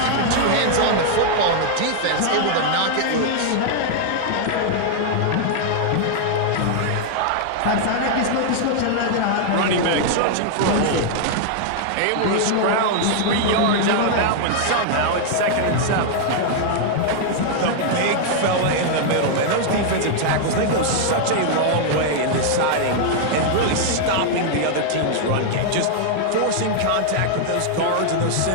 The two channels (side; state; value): both; different; correlation -0.01